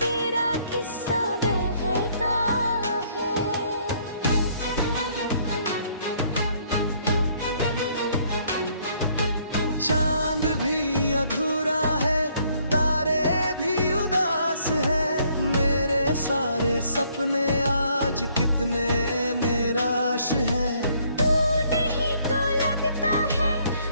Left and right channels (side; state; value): both; inverted; correlation -0.66